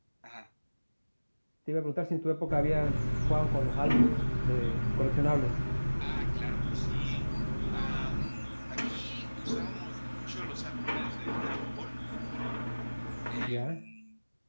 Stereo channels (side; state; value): both; inverted; correlation -1.00